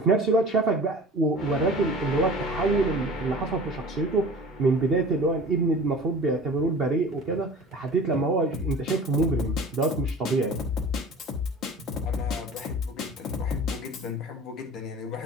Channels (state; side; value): normal; both; correlation 0.41